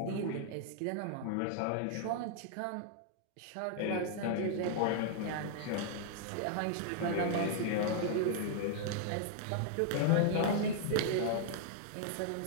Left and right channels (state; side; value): different; both; correlation -0.01